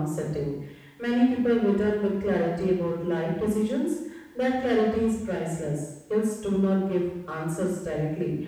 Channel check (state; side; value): identical; both; correlation 1.00